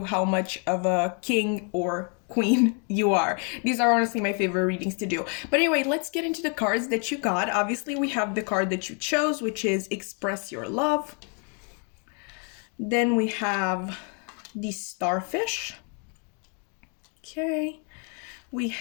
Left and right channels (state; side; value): quieter; right; 39.4 dB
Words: how much of a king or queen you are. These are honestly my favorite readings to do. But anyway, let's get into the cards that you got. Obviously, we have the card that you chose, which is Express Your Love. Then we have the Starfish. Okay. We